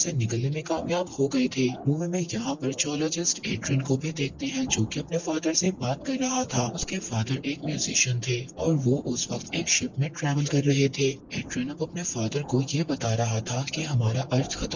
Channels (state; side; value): identical; both; correlation 1.00